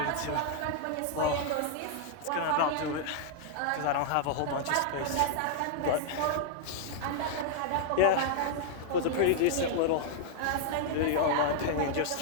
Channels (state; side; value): different; both; correlation -0.01